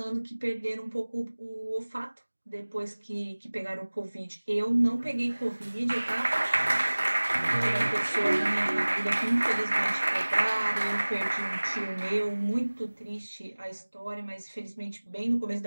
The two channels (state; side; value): inverted; both; correlation -1.00